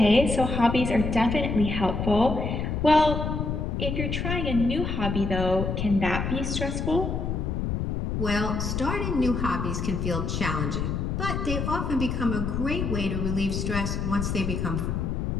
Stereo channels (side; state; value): left; noise; rumble, 2 dB below the sound